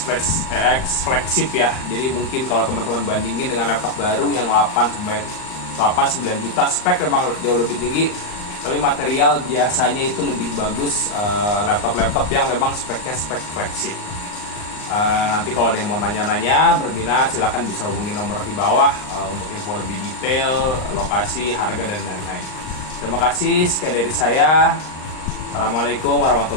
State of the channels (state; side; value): late; right; 39 ms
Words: flagship ya. Jadi mungkin kalau teman-teman bandingin dengan laptop baru yang 8-9 juta, spek memang jauh lebih tinggi, tapi material biasanya itu lebih bagus laptop-laptop yang memang speknya spek flagship. Nanti kalau ada yang mau nanya-nanya, berminat, silahkan bisa hubungi nomor di bawah untuk info lebih detail, lokasi, harga, dan lain-lain. Terima kasih, sekian dari saya. Assalamualaikum